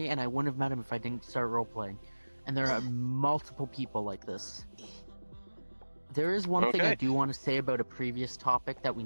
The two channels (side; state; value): both; inverted; correlation -1.00